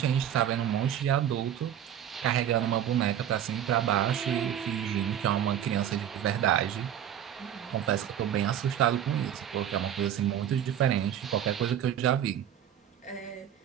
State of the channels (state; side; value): quieter; left; 10.1 dB